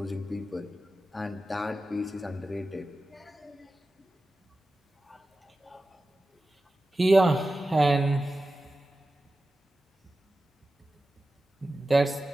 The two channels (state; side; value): normal; both; correlation 0.94